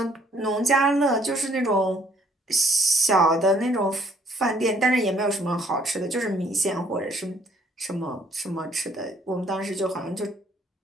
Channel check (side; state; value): both; normal; correlation 0.63